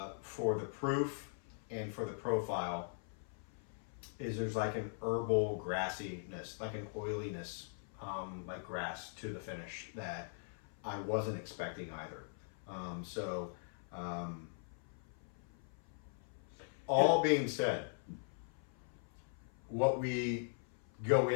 for the proof and for the profile, is there's like an herbal grassiness, like an oiliness, like grass to the finish that I wasn't expecting either. All being said, what we go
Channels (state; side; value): silent; right; 51 dB below the other